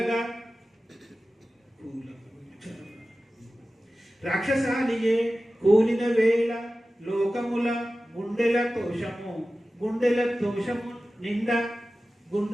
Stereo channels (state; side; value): normal; both; correlation 0.95